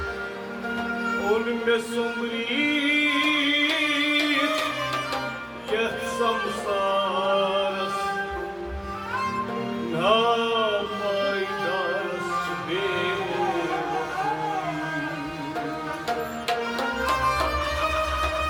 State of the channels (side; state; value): both; identical; correlation 1.00